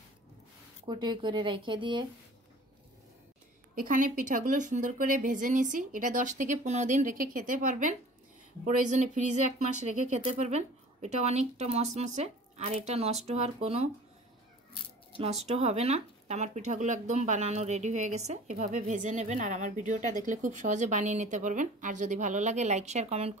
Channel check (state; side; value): normal; both; correlation 0.45